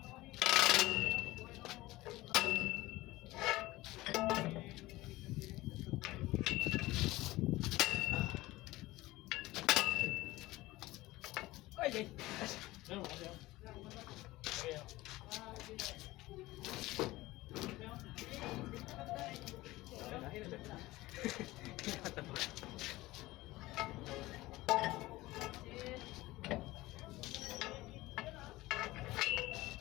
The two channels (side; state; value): right; quieter; 18.7 dB